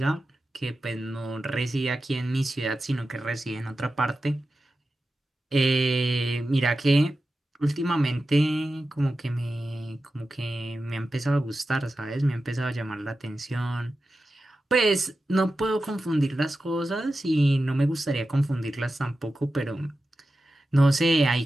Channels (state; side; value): normal; both; correlation 0.92